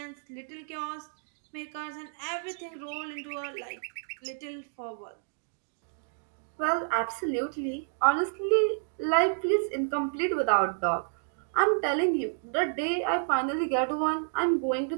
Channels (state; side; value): silent; left; digital silence